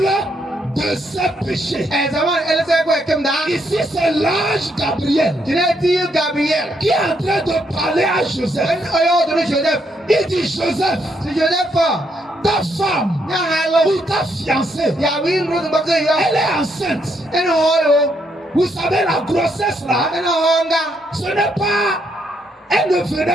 de ses péchés. Ici c'est l'ange Gabriel qui est en train de parler à Joseph. Il dit Joseph, ta femme ou ta fiancée, elle est enceinte. Vous savez la grossesse là, ce n'est pas, elle ne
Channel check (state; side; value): normal; both; correlation 0.75